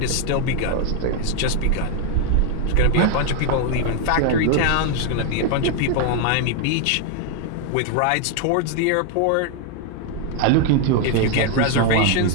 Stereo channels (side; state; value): both; different; correlation 0.01